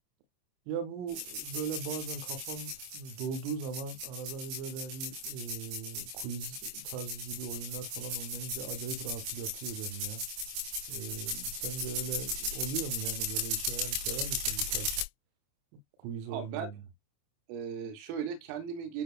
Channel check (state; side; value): late; left; 26 ms